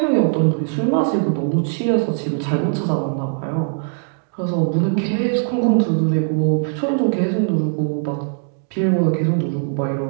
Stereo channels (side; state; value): left; silent; 66 dB below the other